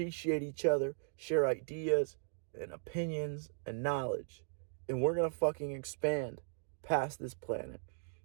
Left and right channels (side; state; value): left; silent; digital silence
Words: each other, share ideas and opinions and knowledge. And we're going to fucking expand past this planet.